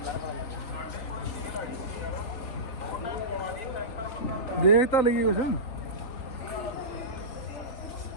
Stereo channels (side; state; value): right; late; 3.9 ms